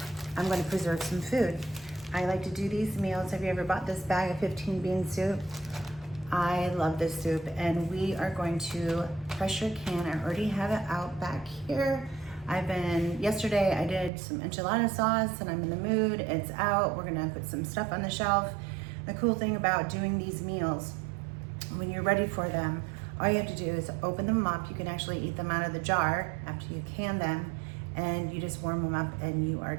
I'm going to preserve some food. I like to do these meals. Have you ever bought this bag of 15 bean soup? I love this soup, and we are going to pressure can. I already have it out back here. Yesterday I did some enchilada sauce and I'm in the mood. It's out. We're gonna put some stuff on the shelf. The cool thing about doing these meals, when you're ready for them, all you have to do is open them up. You can actually eat them out of the jar after you can them, and you just warm them up and you are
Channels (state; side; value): drops out; left; at 14.1 s